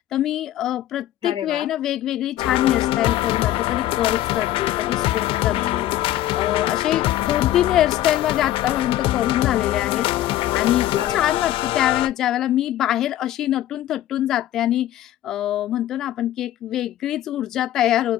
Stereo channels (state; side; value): quieter; right; 13.4 dB